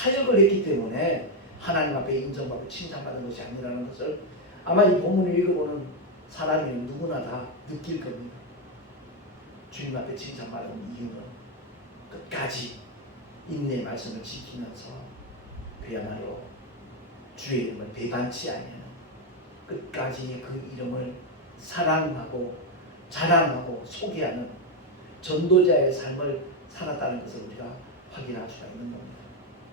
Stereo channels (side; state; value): both; normal; correlation 0.04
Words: 했기 때문에 하나님 앞에 인정받고 칭찬받은 것이 아니라는 것을 아마 이 본문을 읽어보는 사람이면 누구나 다 느낄 겁니다. 주님 앞에 칭찬받은 이유는 끝까지 인내의 말씀을 지키면서 그야말로 주의 이름을 배반치 아니하는, 끝까지 그 이름을 사랑하고 자랑하고 소개하는 전도자의 삶을 살았다는 것을 우리가 확인할 수가 있는 겁니다.